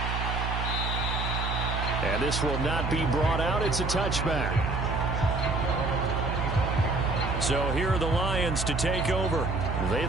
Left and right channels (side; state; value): right; noise; hum, 2 dB below the sound